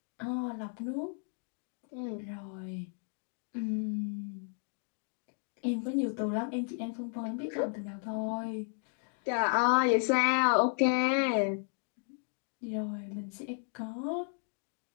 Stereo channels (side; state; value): right; silent; 55 dB below the other